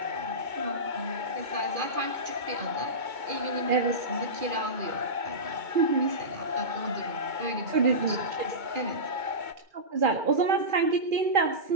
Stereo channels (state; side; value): late; left; 2.4 ms